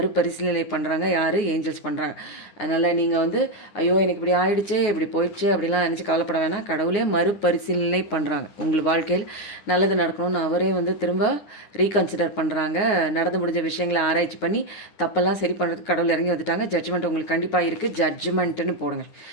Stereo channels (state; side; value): late; right; 9.9 ms